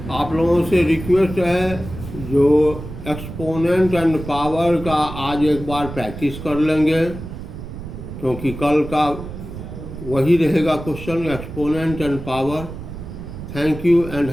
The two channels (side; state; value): right; noise; rumble, 10 dB below the sound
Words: आप लोगों से रिक्वेस्ट है, जो एक्सपोनेंट एंड पावर का आज एक बार प्रैक्टिस कर लेंगे, क्योंकि कल का वही रहेगा question, exponent and power. Thank you and